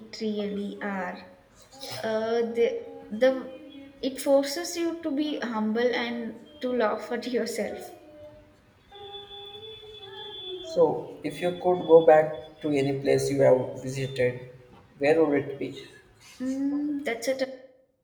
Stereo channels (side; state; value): both; identical; correlation 1.00